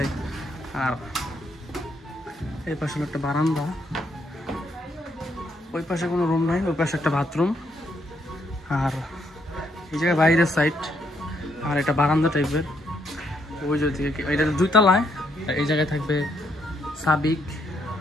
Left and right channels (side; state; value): both; normal; correlation 0.74